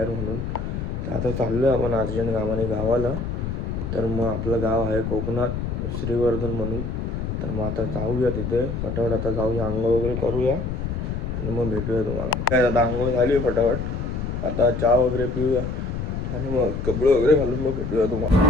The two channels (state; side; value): noise; left; rumble, 4 dB below the sound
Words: म्हणून. तर आता चाललो आहे आपण अर्जंट कामाने गावाला. तर मग आपलं गाव आहे कोकणात श्रीवर्धन म्हणून. तर मग आता जाऊया तिथे फटाफट. आता जाऊया, आंघोळ वगैरे करूया आणि मग भेटूया तुम्हाला. काय आता आंघोळ झाली आहे फटाफट. आता चहा वगैरे पिऊया आणि मग कपडे वगैरे घालून मग भेटूया तुम्हाला.